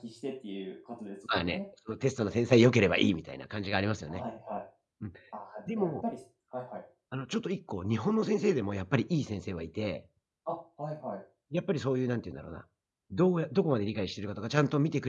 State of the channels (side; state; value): both; identical; correlation 1.00